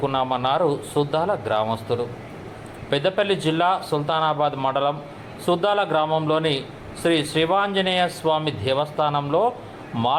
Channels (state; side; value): identical; both; correlation 1.00